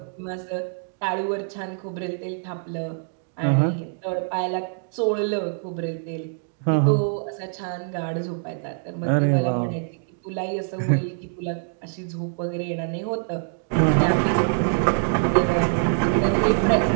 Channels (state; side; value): silent; left; digital silence